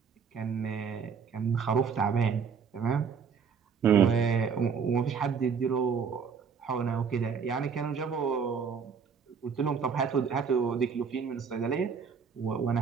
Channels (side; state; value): left; quieter; 6.3 dB